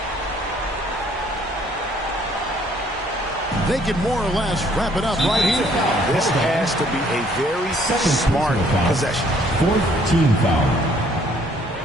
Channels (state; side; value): normal; both; correlation 0.62